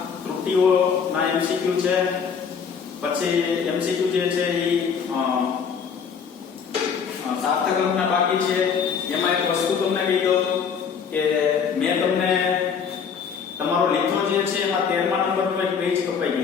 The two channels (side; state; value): right; quieter; 6.6 dB